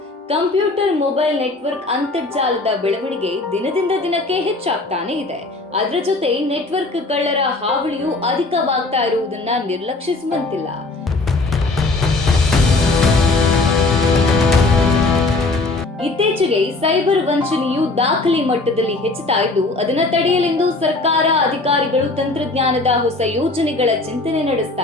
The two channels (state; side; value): quieter; right; 3.2 dB